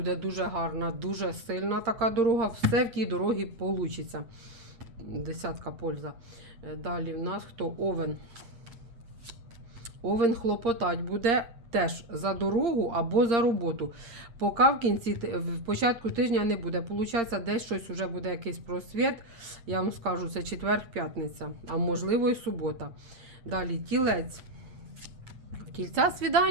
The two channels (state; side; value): late; left; 8.7 ms